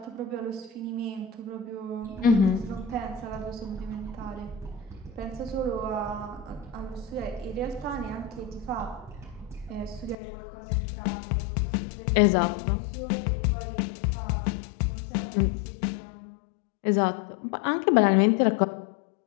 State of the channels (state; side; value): drops out; right; at 10.2 s